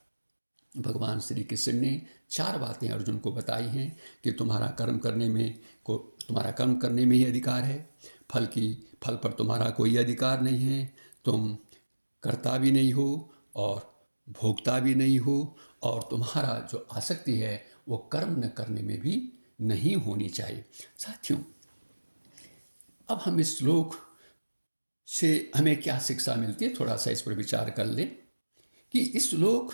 भगवान श्री कृष्ण ने 4 बातें अर्जुन को बताई हैं कि तुम्हारा कर्म करने में ही अधिकार है, फल पर तुम्हारा कोई अधिकार नहीं है, तुम कर्ता भी नहीं हो और भोक्ता भी नहीं हो, और तुम्हारा जो आसक्ति है वो कर्म न करने में भी नहीं होनी चाहिए। साथियों, अब हम इस श्लोक से हमें क्या शिक्षा मिलती है, थोड़ा सा इस पर विचार कर लें कि इस श्लोक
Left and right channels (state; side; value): inverted; both; correlation -1.00